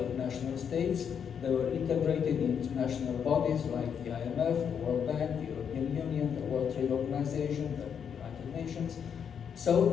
national states. They were integrated in international bodies like the IMF, the World Bank, the European Union, the World Trade Organization, the United Nations. So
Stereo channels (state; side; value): quieter; right; 7.6 dB